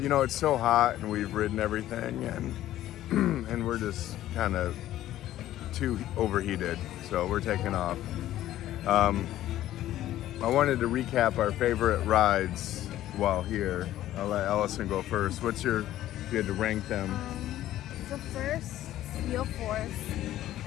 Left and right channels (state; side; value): quieter; right; 13.5 dB